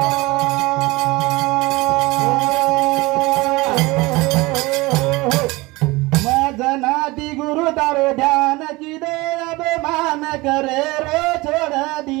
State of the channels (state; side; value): quieter; left; 22.4 dB